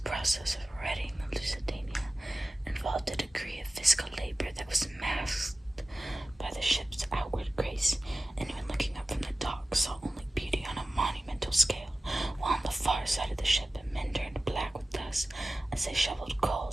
process of righting the Lusitania involved a degree of physical labor that was masked by the ship's outward grace. Anyone looking up from the dock saw only beauty on a monumental scale, while on the far side of the ship men turned black with dust as they shoveled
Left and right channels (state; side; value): normal; both; correlation 0.96